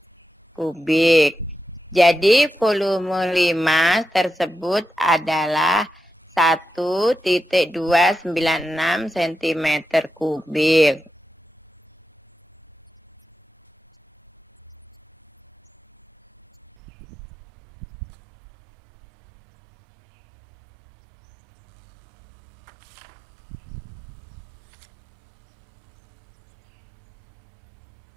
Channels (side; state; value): left; drops out; at 16.7 s